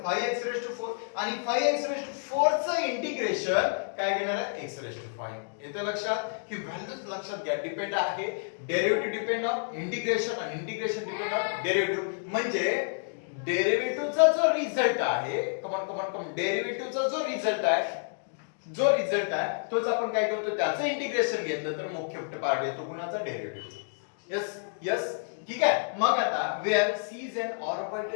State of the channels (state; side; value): silent; right; digital silence